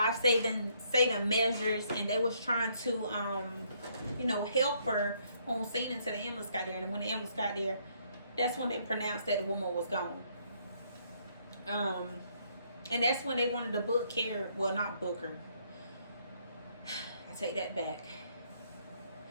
measures, and they was trying to help her on scene until the ambulance got there. And when the ambulance got there, that's when they pronounced that the woman was gone. And that's when they wanted to book Karen. Well, not book her. I take that back.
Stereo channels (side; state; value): both; inverted; correlation -0.69